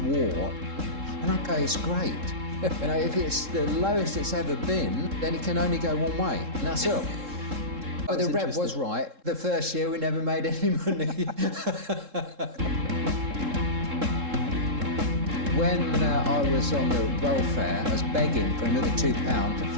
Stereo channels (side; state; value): left; late; 3.7 ms